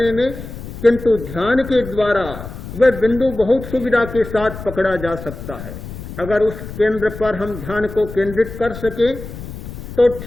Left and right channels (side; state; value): left; noise; rumble, 11 dB below the sound